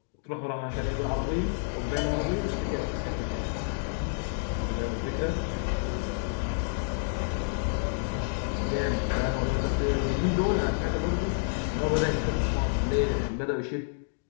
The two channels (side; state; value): right; silent; digital silence